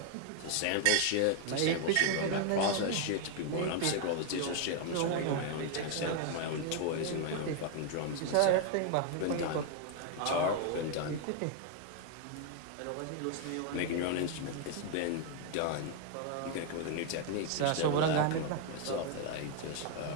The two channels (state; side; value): different; both; correlation 0.00